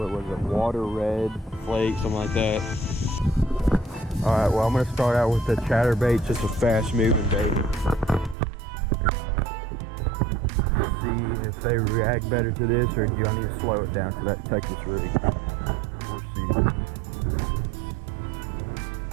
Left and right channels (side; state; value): left; drops out; at 8.3 s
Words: was it, water red flake, something like that. All right, well, I'm gonna start out with the chatterbait, just a fast moving bait. See if they react better to this, or do I need to slow it down to that Texas rig? We'll see.